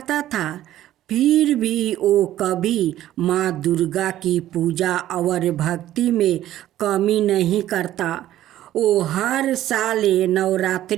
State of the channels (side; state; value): left; quieter; 13.3 dB